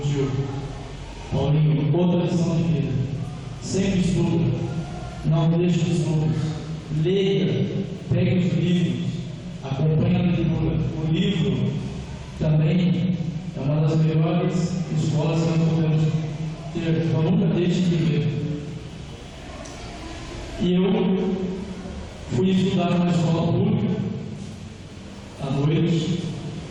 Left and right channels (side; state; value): both; identical; correlation 1.00